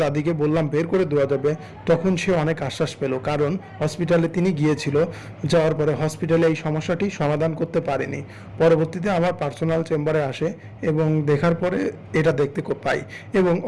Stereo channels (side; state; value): both; identical; correlation 1.00